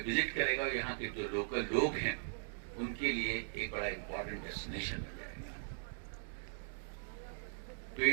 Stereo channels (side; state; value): left; silent; digital silence